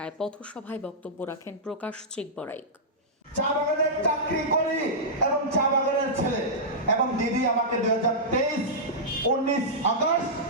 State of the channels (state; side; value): normal; both; correlation -0.13